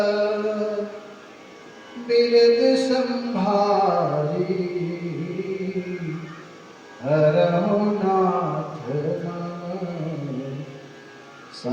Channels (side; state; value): both; identical; correlation 1.00